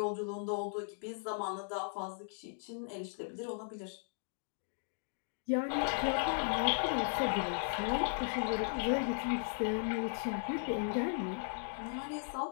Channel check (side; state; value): right; silent; digital silence